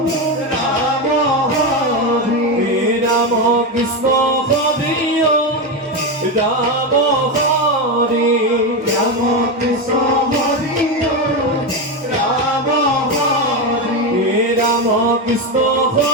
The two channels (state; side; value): normal; both; correlation 0.12